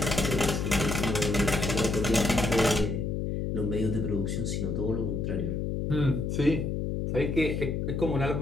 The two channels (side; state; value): left; noise; hum, 1 dB below the sound